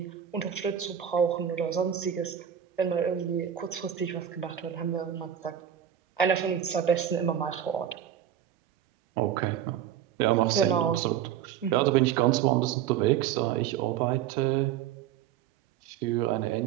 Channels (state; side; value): quieter; left; 9.7 dB